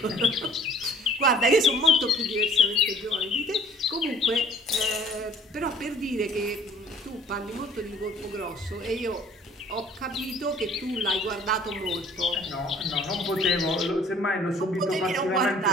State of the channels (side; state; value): both; normal; correlation 0.53